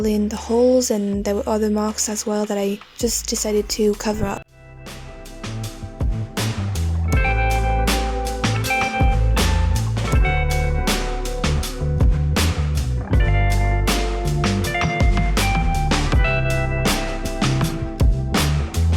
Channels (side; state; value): both; identical; correlation 1.00